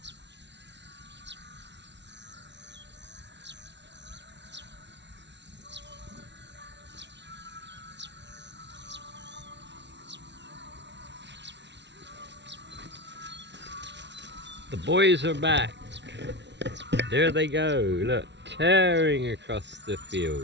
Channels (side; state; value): left; late; 0.51 ms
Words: The boys are back. There they go. Look, tearing across the